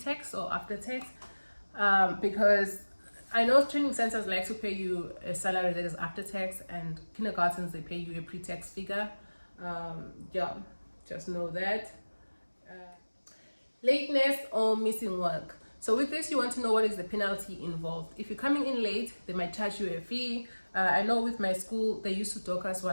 or after-tax, because I know training centers like to pay you a salary that is after-tax, and kindergartens, they pay you a pre-tax figure. Yeah, just know that. Lateness or missing work. So with this, you want to know what is the penalty involved. If you're coming in late, they might charge you a fee. I know with my school, they used to dock us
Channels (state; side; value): inverted; both; correlation -1.00